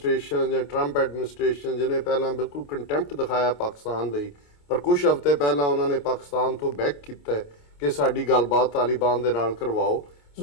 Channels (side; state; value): right; late; 28 ms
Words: ਜਾਂ ਟਰੰਪ ਐਡਮਿਨਿਸਟ੍ਰੇਸ਼ਨ ਜਿਹਨੇ ਪਹਿਲਾਂ ਬਿਲਕੁਲ ਕੰਟੈਂਪਟ ਦਿਖਾਇਆ ਪਾਕਿਸਤਾਨ ਲਈ, ਪਰ ਕੁਝ ਹਫ਼ਤੇ ਪਹਿਲਾਂ ਉਹਨਾਂ ਨੇ ਪਾਕਿਸਤਾਨ ਤੋਂ ਬੈਕ ਕੀਤਾ ਹੈ ਕਿ ਸਾਡੀ ਗੱਲਬਾਤ ਤਾਲਿਬਾਨ ਦੇ ਨਾਲ ਕਰਵਾਓ।